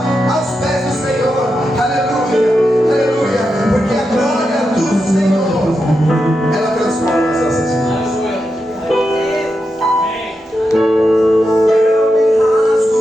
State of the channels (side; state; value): both; normal; correlation 0.87